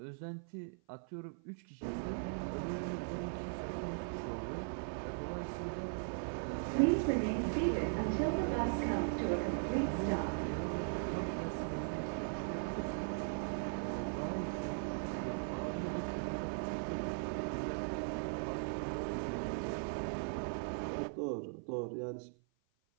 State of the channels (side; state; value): left; silent; 52 dB below the other